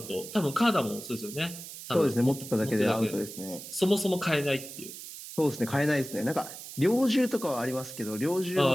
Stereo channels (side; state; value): right; noise; hiss, 12 dB below the sound